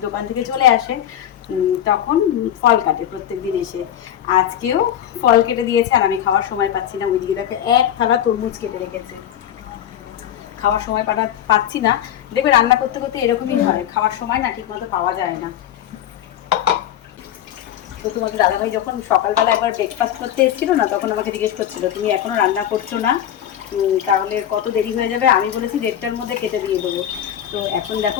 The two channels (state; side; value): quieter; right; 10.8 dB